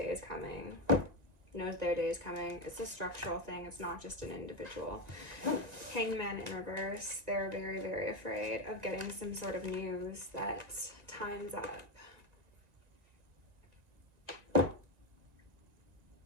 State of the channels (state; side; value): late; left; 1.9 ms